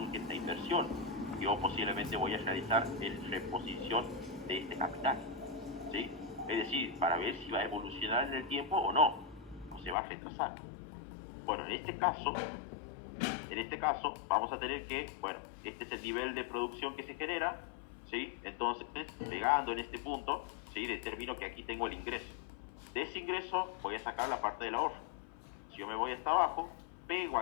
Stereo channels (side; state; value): right; drops out; at 10.0 s